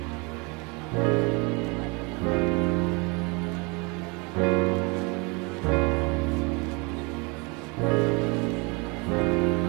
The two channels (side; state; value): left; quieter; 29.5 dB